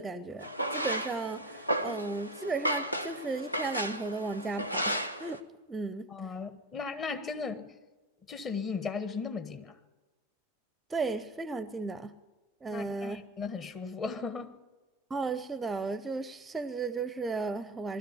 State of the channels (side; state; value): both; normal; correlation 0.24